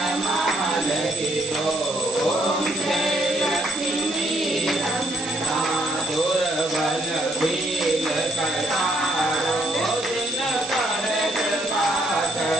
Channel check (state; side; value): noise; right; hiss, 10 dB below the sound